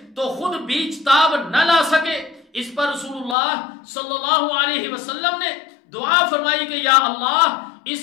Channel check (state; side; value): drops out; right; at 3.4 s